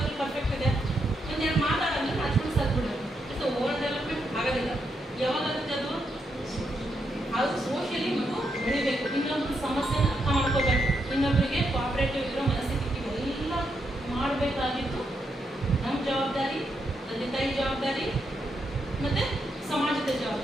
ಪರ್ಫೆಕ್ಟ್ ಇದೆ, ಒಂದೆರಡು ಮಾತಾಡೋದ್ರೆ ನಾಚ್ಕೊಂಡು ಸಾಧ್ಬಿಡೋದು. ಸೊ ಓವರ್ ಡೆವಲಪ್ಮೆಂಟ್ ಆಗೋದಿಲ್ಲ. ಯಾವಾಗಾಗುತ್ತೆ ಅದು? ಅದು ಸೋಷಿಯಲಿ ಮಗು ಬೆಳಿಬೇಕು, ಇನ್ನೊಬ್ರು ಸಮಸ್ಯೆನ ಅರ್ಥ ಮಾಡ್ಕೋಬೇಕು, ಇನ್ನೊಬ್ಬರಿಗೆ ಕೋಆಪರೇಟಿವ್ ಇರೋ ಮನಸ್ಥಿತಿ ಇವೆಲ್ಲ ಮಾಡಬೇಕಾಗಿತ್ತು ನಮ್ಮ ಜವಾಬ್ದಾರಿ, ತಂದೆ ತಾಯಿ ಜವಾಬ್ದಾರಿ, ಮತ್ತು ಸಮಾಜದ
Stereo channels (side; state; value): both; normal; correlation 0.81